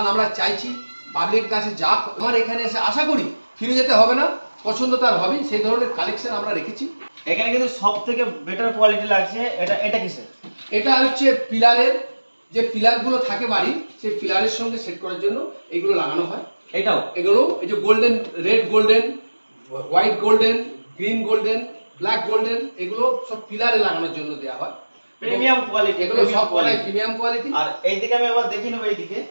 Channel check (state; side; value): inverted; both; correlation -1.00